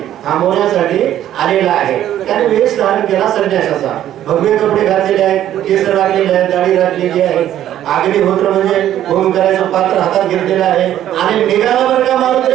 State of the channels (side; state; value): left; quieter; 11.8 dB